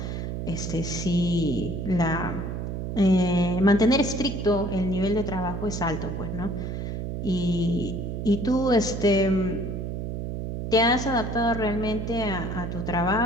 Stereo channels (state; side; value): noise; right; hum, 4 dB below the sound